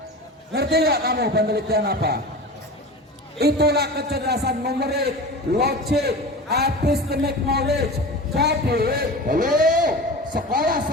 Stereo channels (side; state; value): both; normal; correlation 0.32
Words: Ngerti nggak kamu penelitian apa? Itulah kecerdasan numerik, logik, epistemic knowledge. Jadi,